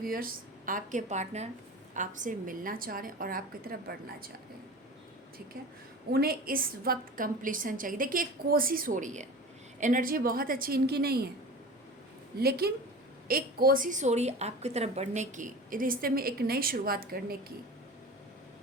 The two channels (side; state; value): both; normal; correlation 0.35